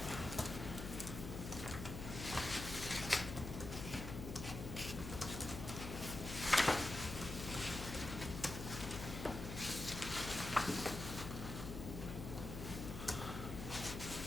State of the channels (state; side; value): noise; left; hum, 7 dB below the sound